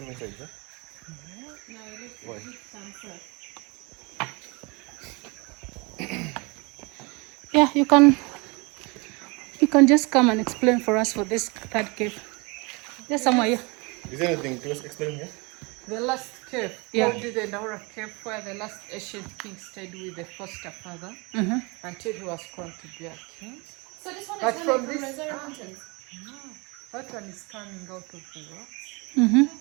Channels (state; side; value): quieter; left; 28.3 dB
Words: inside, huh? Why? Yeah, you can just come and explain for us for this third cave. There's somewhere here. Is there anything to explain here? The last cave, called the Daura cave, where the last ancient king stayed with the foster father until he was crowned to be a king. So this one But is from from this, Reserve Mountains. that one is coming out of the rocks.